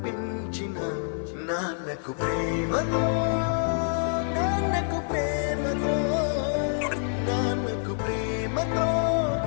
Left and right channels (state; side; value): silent; right; digital silence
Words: పెంచిన నాన్నకు ప్రేమతో నాన్నకు ప్రేమతో నాన్నకు ప్రేమతో